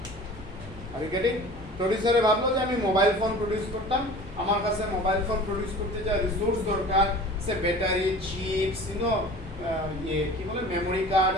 Are getting? প্রডিউসারে ভাবলো যে আমি মোবাইল ফোন প্রডিউস করতাম, আমার কাছে মোবাইল ফোন প্রডিউস করতে যা রিসোর্স দরকার, সে ব্যাটারি, চিপস, কি বলে memory card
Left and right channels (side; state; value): both; normal; correlation 0.42